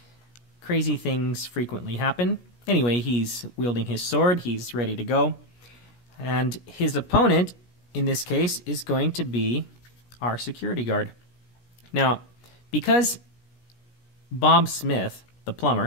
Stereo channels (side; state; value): right; late; 17 ms